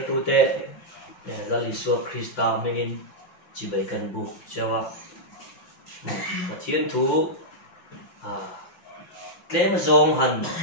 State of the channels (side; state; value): right; late; 5.8 ms